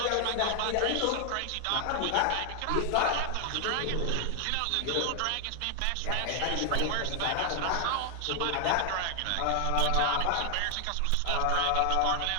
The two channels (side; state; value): both; different; correlation 0.00